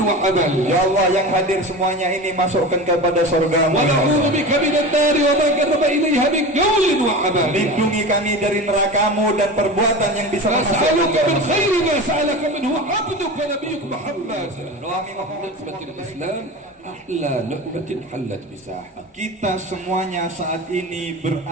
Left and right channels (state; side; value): normal; both; correlation 0.30